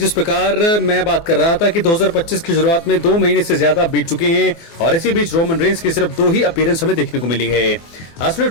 प्रकार मैं बात कर रहा था कि 2025 की शुरुआत में 2 महीने से ज्यादा बीत चुके हैं और इसी बीच रोमन रेंस की सिर्फ 2 ही अपीयरेंस हमें देखने को मिली है। असली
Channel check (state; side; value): late; right; 24 ms